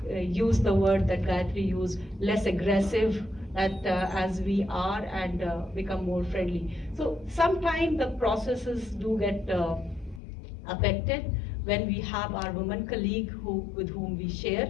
use the word that Gayatri used, less aggressive as we are, and become more friendly. So sometimes the processes do get affected when we have our women colleague with whom we share.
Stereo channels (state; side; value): drops out; right; at 10.2 s